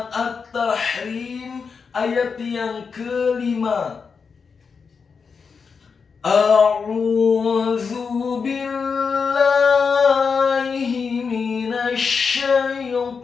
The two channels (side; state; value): right; quieter; 5.5 dB